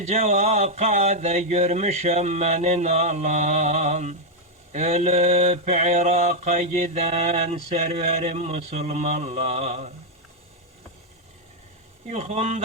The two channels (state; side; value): normal; both; correlation -0.02